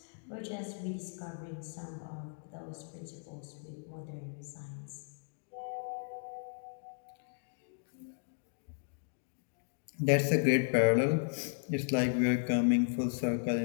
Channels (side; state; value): right; silent; digital silence